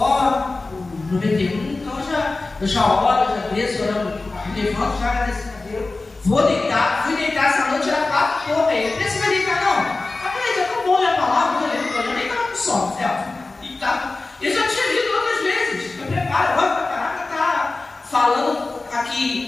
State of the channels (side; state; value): right; quieter; 3.4 dB